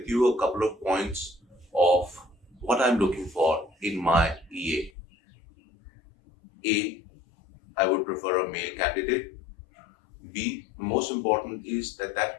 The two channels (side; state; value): right; drops out; at 4.9 s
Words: you a couple of points of what I'm looking for in my EA. I would prefer a male candidate. B, most important is that that